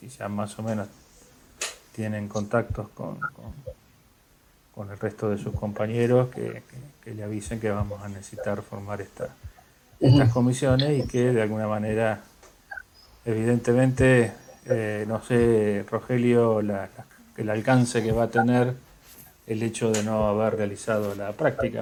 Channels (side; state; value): both; identical; correlation 1.00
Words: ya más o menos tienen contactos con el resto de sus compañeros, que le avisen que vamos a necesitar formar estas comisiones y que de alguna manera, evidentemente, no sé, Rogelio, el alcance que va a tener el hecho de no haber realizado la